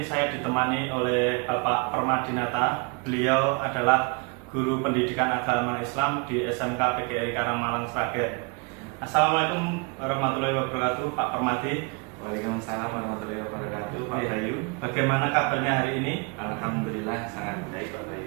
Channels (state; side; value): quieter; left; 31.8 dB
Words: saya ditemani oleh Bapak Permadinata. Beliau adalah guru pendidikan agama Islam di SMK PGRI Karamalang Sragen. Assalamualaikum warahmatullahi wabarakatuh, Pak Permadi. Waalaikumsalam warahmatullahi wabarakatuh, Pak Bayu. Bagaimana kabarnya hari ini? Alhamdulillah sangat baik, Pak